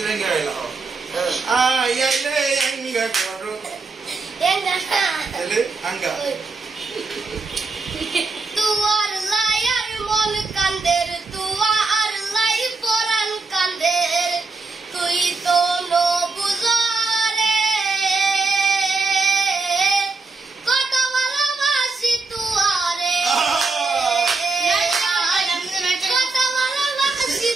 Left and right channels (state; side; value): quieter; left; 4.0 dB